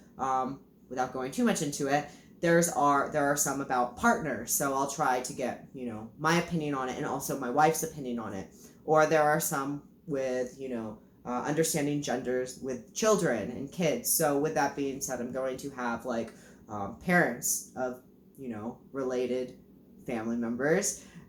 without going too much into it, there are some about partners, so I'll try to get my opinion on it and also my wife's opinion on it. Or there are some with understanding genders with children and kids. So with that being said, I'm going to have parents of related family members,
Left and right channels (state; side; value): identical; both; correlation 1.00